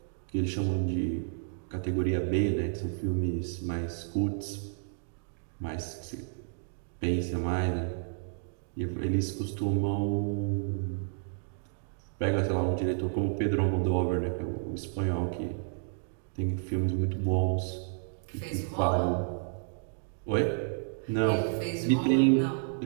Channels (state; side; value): silent; left; digital silence